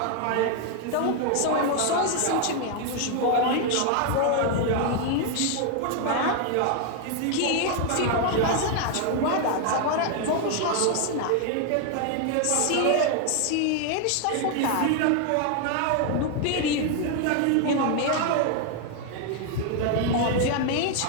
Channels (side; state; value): both; different; correlation 0.01